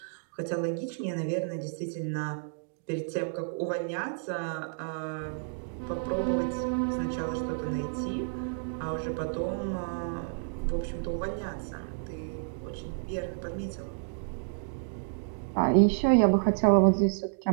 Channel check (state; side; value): silent; left; digital silence